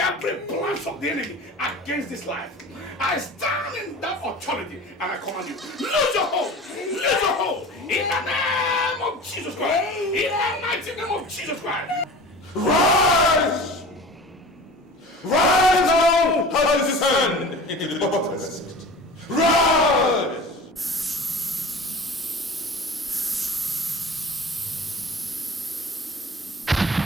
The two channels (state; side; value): normal; both; correlation 0.38